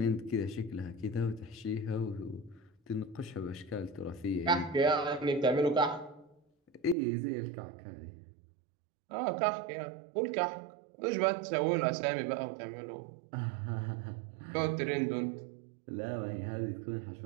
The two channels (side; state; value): left; drops out; at 7.0 s